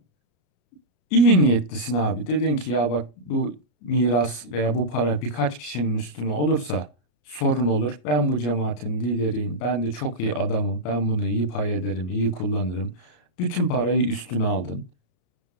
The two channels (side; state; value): right; late; 33 ms